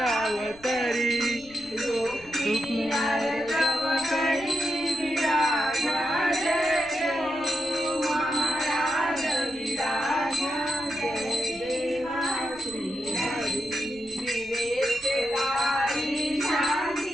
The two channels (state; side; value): noise; left; rumble, 22 dB below the sound